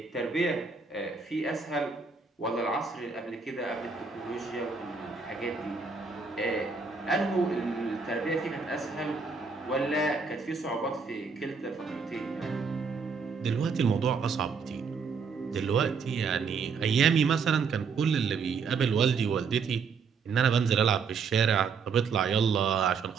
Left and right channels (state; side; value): quieter; left; 5.3 dB